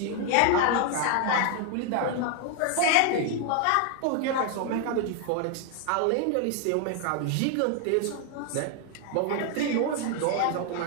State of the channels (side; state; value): both; different; correlation 0.00